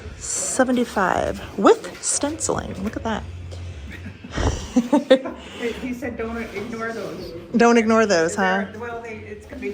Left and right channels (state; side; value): identical; both; correlation 1.00